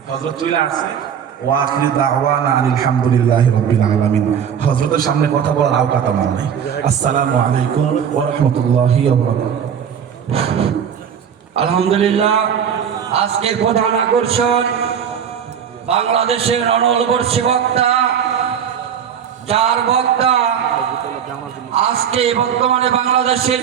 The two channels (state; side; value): quieter; left; 8.1 dB